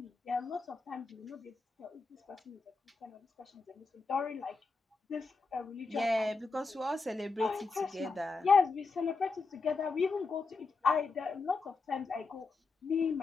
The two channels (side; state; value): right; quieter; 4.1 dB